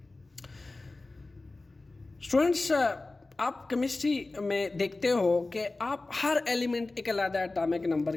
स्टूडेंट्स, आप केमिस्ट्री में देखते हो कि आप हर एलिमेंट एक अलग एटॉमिक नंबर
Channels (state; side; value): quieter; right; 3.2 dB